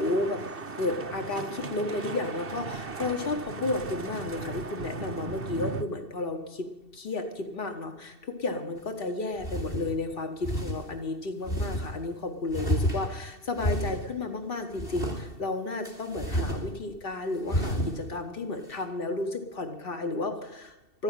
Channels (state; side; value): late; right; 2.7 ms